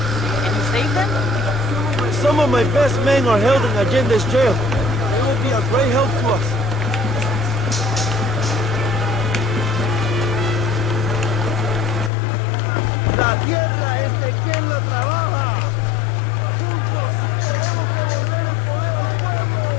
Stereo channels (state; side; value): drops out; right; at 12.1 s